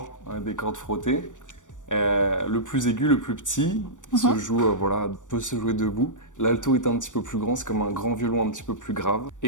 des cordes frottées. Le plus aigu, le plus petit, se joue, peut se jouer debout. L'alto est un petit peu plus grand, c'est comme un grand violon un petit peu plus grave.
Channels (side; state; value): right; late; 0.86 ms